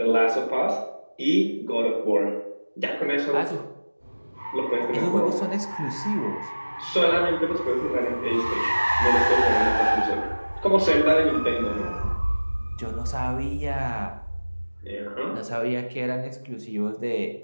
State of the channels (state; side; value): inverted; both; correlation -1.00